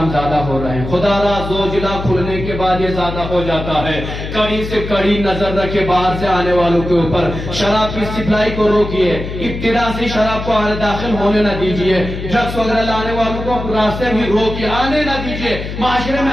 زیادہ ہو رہے ہیں. خدا را زوجلہ کھلنے کے بعد یہ زیادہ ہو جاتا ہے. کڑی سے کڑی نظر رکھے باہر سے آنے والوں کے اوپر، شراب کی سپلائی کو روکیے، ابتدا سے شراب کو داخل ہونے نہ دیجیے، ڈرگز وغیرہ لانے والوں کو راستے میں روکیے، آنے نہ دیجیے. معاشرے میں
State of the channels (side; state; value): left; noise; hum, 7 dB below the sound